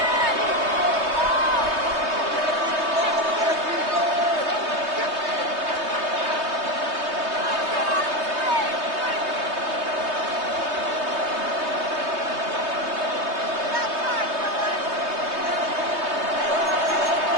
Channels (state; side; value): late; left; 3.2 ms